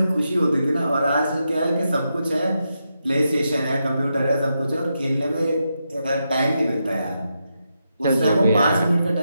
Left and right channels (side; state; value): both; inverted; correlation -0.85